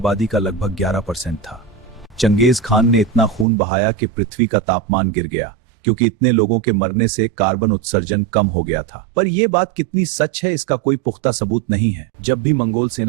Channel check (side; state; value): left; drops out; at 3.5 s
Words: का लगभग 11% था। चंगेज खान ने इतना खून बहाया कि पृथ्वी का तापमान गिर गया, क्योंकि इतने लोगों के मरने से कार्बन उत्सर्जन कम हो गया था। पर यह बात कितनी सच है, इसका कोई पुख्ता सबूत नहीं है। जब भी मंगोल